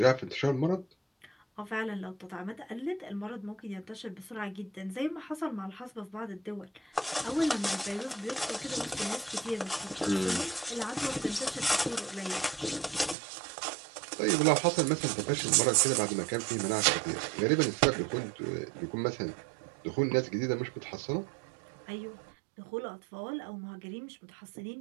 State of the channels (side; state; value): left; drops out; at 13.2 s